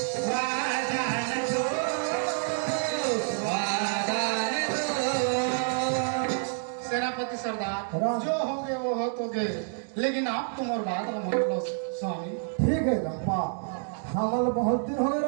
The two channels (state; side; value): silent; left; digital silence